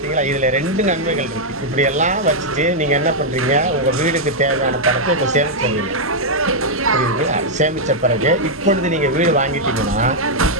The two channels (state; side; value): normal; both; correlation -0.03